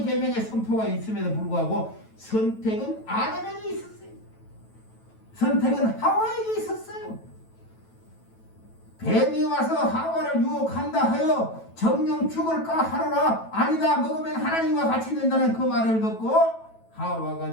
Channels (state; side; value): late; right; 9.1 ms